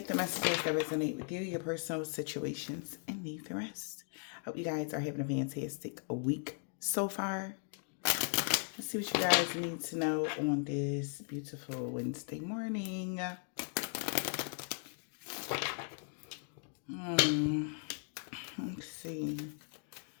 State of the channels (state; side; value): silent; right; 53 dB below the other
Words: the messages that resonate with you, your personal situations, and leave the rest. Hope you guys are having a fantastic week so far. Let's see what you guys need to know on this beautiful Wednesday morning. Let's see.